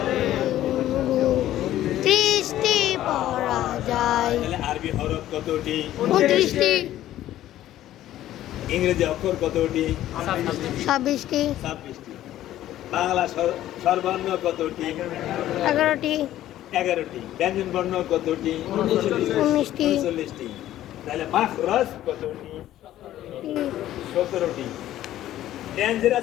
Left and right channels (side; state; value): right; quieter; 13.3 dB